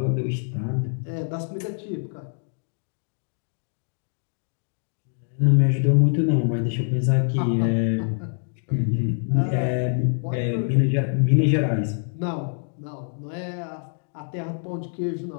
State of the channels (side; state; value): right; silent; 62 dB below the other